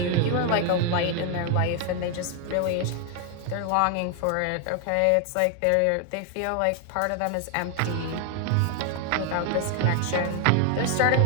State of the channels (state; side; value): different; both; correlation 0.00